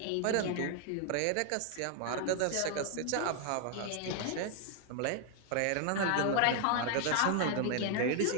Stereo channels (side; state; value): both; different; correlation 0.00